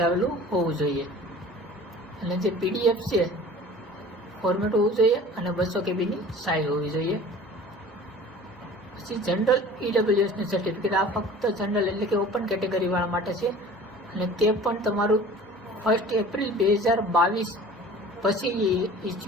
હોવું જોઈએ. અને જે પીડીએફ છે ફોર્મેટ હોવું જોઈએ અને 200 કેબીની સાઇઝ હોવી જોઈએ. પછી જનરલ EWSનું સર્ટિફિકેટ, આ ફક્ત જનરલ એટલે કે ઓપન કેટેગરીવાળા માટે છે અને તે પણ તમારું 1 એપ્રિલ 2022 પછી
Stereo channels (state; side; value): normal; both; correlation 0.44